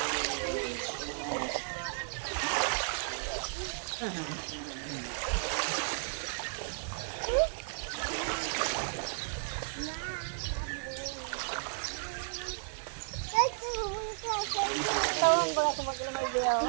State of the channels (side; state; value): left; silent; digital silence